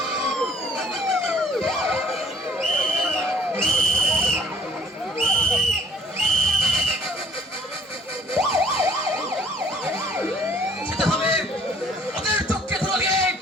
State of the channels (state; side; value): normal; both; correlation 0.58